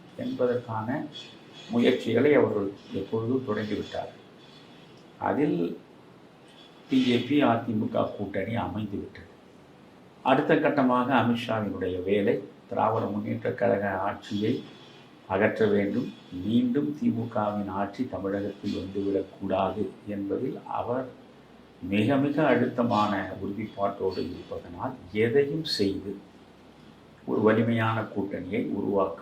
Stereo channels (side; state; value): both; identical; correlation 1.00